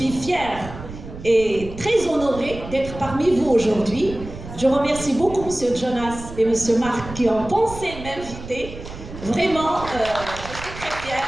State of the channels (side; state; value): right; noise; rumble, 12 dB below the sound